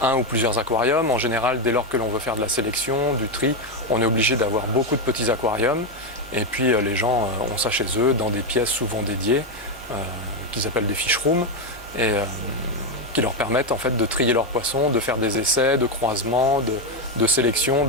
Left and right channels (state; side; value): normal; both; correlation 0.07